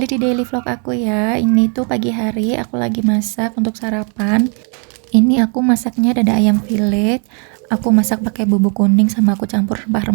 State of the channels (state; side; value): quieter; left; 39.3 dB